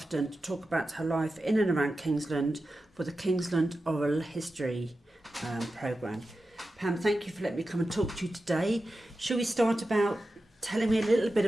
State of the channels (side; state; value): both; normal; correlation 0.92